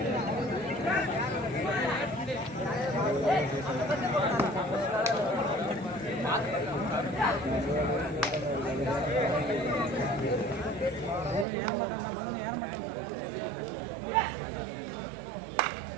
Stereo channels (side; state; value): left; drops out; at 11.5 s